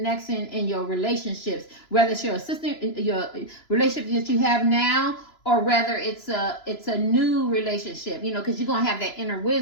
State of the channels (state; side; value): late; right; 3.0 ms